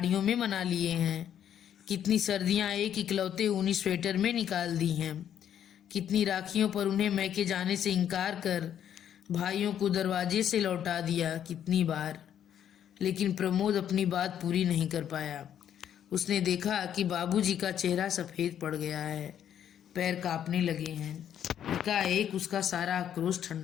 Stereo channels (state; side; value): quieter; right; 9.8 dB